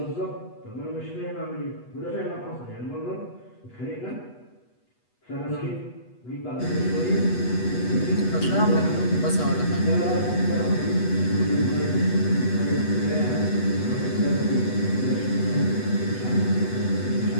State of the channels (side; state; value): right; late; 8.2 ms